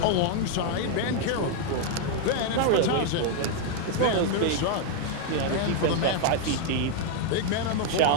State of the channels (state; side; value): different; both; correlation 0.00